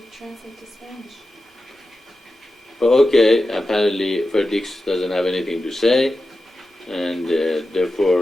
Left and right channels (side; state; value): both; normal; correlation 0.92